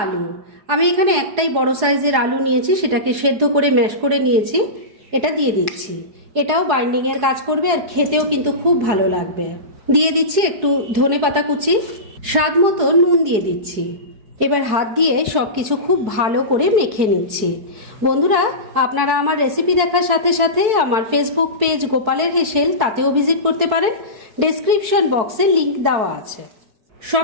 আলু। আমি এখানে একটাই বড় সাইজের আলু নিয়েছি, সেটাকে সেদ্ধ করে ম্যাশ করে নিয়েছি, এটা দিয়ে দিচ্ছি। এটাও বাইন্ডিংয়ের কাজ করবে আর খেতেও কিন্তু খুব ভালো লাগবে। দিয়ে দিচ্ছি একটু ধনেপাতা কুচি, স্বাদ মতো নুন দিয়ে দিচ্ছি। এবার হাত দিয়ে সবকিছু খুব ভালো করে মেখে নিচ্ছি। বন্ধুরা, আপনারা আমার রেসিপি দেখার সাথে সাথে আমার ফেসবুক পেজ গোপালের হেসেল, তাতেও ভিজিট করতে পারেন। ডেসক্রিপশন বক্সে লিংক দেওয়া আছে।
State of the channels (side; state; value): left; late; 4.6 ms